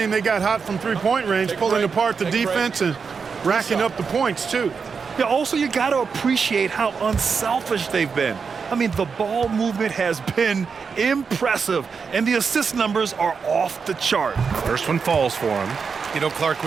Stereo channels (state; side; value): quieter; left; 5.6 dB